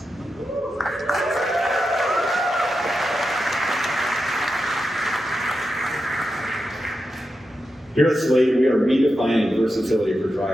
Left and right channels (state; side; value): normal; both; correlation 0.89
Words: Here at Slate, we are redefining versatility for